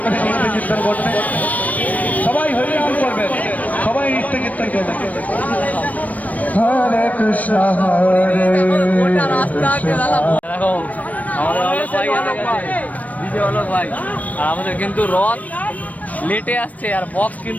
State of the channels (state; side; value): late; right; 0.071 ms